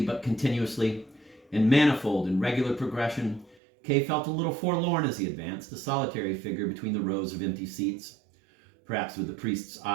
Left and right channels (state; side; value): drops out; left; at 3.6 s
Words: but continuously, in manifold and regular progression. Kay felt a little forlorn as he advanced, a solitary figure between the rows of empty seats, perhaps with the priest's